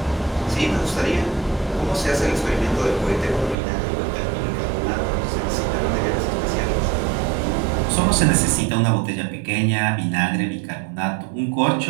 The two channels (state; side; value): drops out; left; at 3.6 s